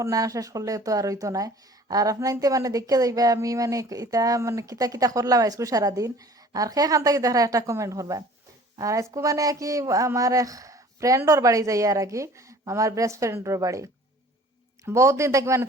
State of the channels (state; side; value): normal; both; correlation 0.49